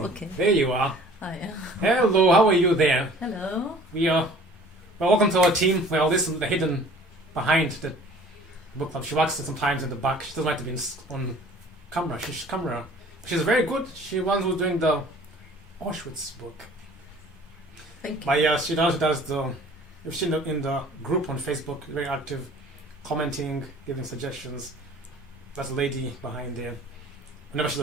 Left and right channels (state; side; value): normal; both; correlation 0.49